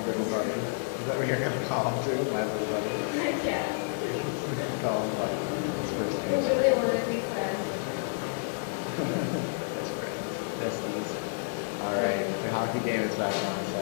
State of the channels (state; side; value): silent; right; digital silence